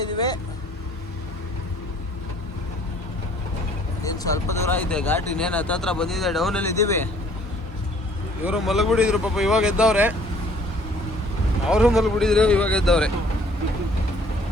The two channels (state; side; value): normal; both; correlation 0.57